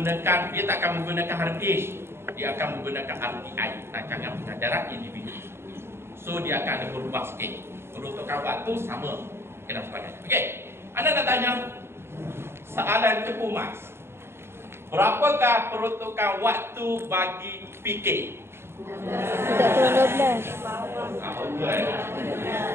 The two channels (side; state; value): left; late; 0.12 ms